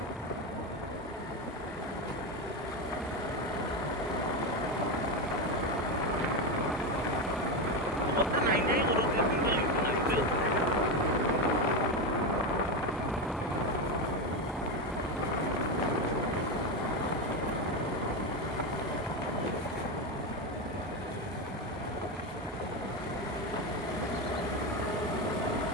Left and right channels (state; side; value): normal; both; correlation 0.14